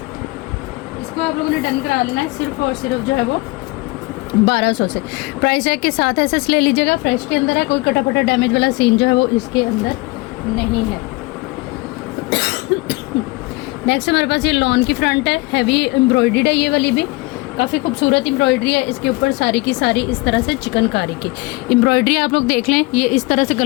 इसको आप लोगों ने डन करा लेना है सिर्फ और सिर्फ जो है वो 1200 से। प्राइस टैग के साथ ऐसे ले लीजिएगा। फ्रेश के अंदर है, कोई कटा फटा डैमेज वाला सीन जो है वो इसके अंदर नहीं है। नेक्स्ट हमारे पास ये लॉन की फ्रंट है, हैवी एम्ब्रॉयडर्ड है, ये वाली भी काफ़ी खूबसूरत एम्ब्रॉयडरी है। इसके ऊपर सारी की सारी इस तरह से चिकनकारी की एम्ब्रॉयडरी आप लोग देख लें। ये इस तरह से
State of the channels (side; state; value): right; quieter; 24.0 dB